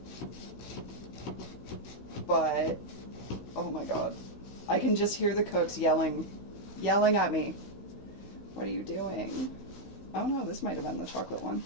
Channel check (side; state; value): right; late; 16 ms